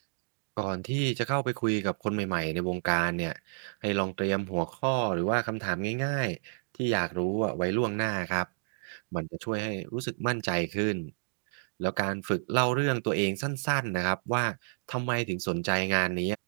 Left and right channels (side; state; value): left; silent; digital silence